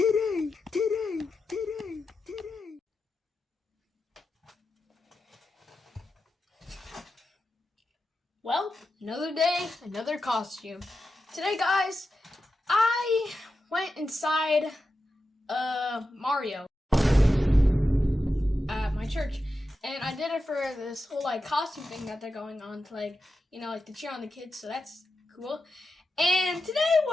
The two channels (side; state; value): both; normal; correlation 0.90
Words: Well, another day, another costume. Today, guys, I went inside Mario at my church, and I did it for this whole costume thing that they're going on to to cheer on the kids. So that's cool. And today